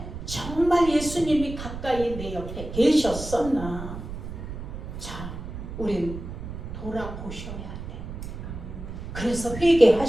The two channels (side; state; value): right; noise; rumble, 9 dB below the sound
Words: 정말 예수님이 가까이 내 옆에 계셨었나? 자, 우린 돌아보셔야 돼. 그래서